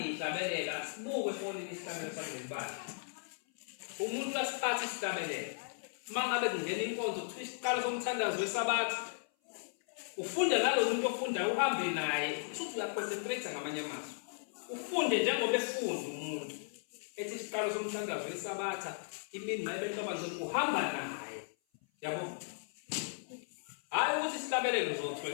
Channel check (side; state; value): right; silent; 54 dB below the other